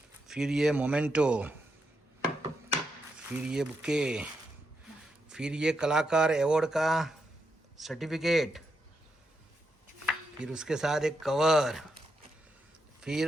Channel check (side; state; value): both; normal; correlation 0.83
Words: फिर ये मोमेंटो, फिर ये बुके, फिर ये कलाकार अवार्ड का सर्टिफिकेट, फिर उसके साथ एक कवर, फिर